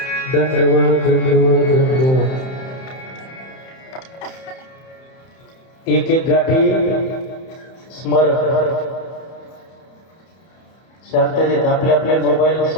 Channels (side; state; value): right; late; 31 ms